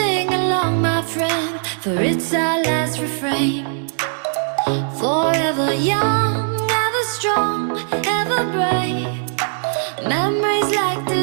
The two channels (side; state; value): left; silent; 66 dB below the other